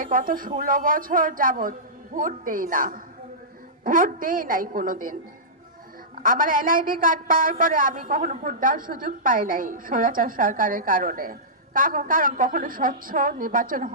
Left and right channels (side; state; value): both; normal; correlation -0.17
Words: গত 16 বছর যাবৎ ভোট দেই নাই কোনোদিন। আমার এনআইডি কার্ড পাওয়ার পরে আমি কখনো ভোট দেওয়ার সুযোগ পাই নাই স্বৈরাচার সরকারের কারণে, কারণ কখনো স্বচ্ছ নির্বাচন